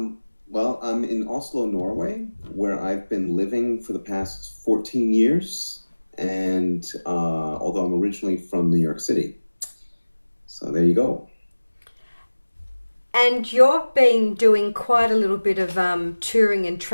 Well, I'm in Oslo, Norway, where I've been living for the past 14 years, and although I'm originally from New York City. So there you go. And you've been doing quite a little bit of touring and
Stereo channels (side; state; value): both; inverted; correlation -1.00